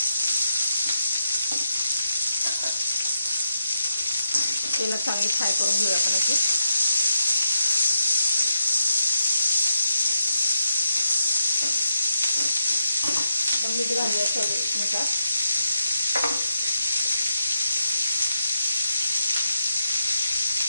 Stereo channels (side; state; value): both; inverted; correlation -0.84